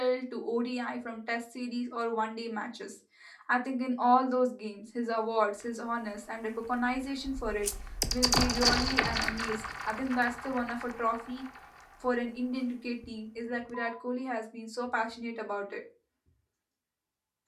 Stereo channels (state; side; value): identical; both; correlation 1.00